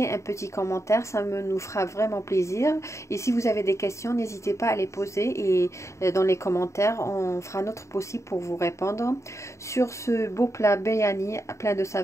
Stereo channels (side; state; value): right; late; 0.14 ms